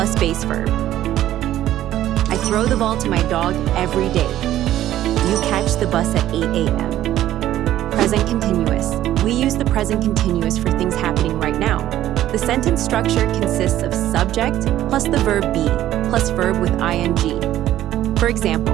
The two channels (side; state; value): left; quieter; 13.1 dB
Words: base verb. I throw the ball to my dog every day. You catch the bus at 8 a.m. Present continuous. We use the present continuous for things happening right now. The sentence structure consists of subject plus the verb be plus verb with ing. For